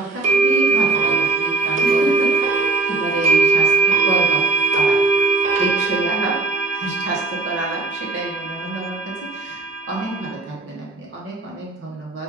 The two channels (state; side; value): quieter; left; 3.5 dB